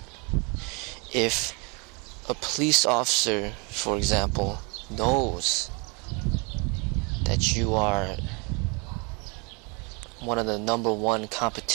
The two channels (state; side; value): quieter; left; 31.8 dB